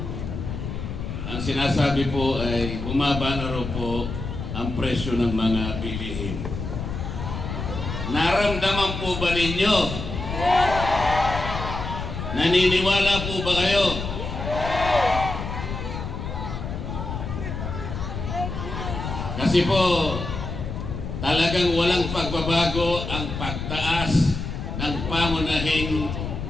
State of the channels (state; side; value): noise; left; rumble, 6 dB below the sound